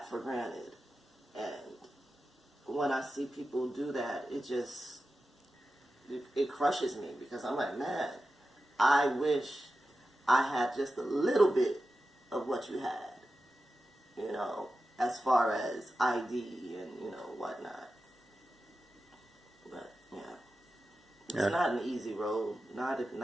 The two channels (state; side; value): normal; both; correlation 0.92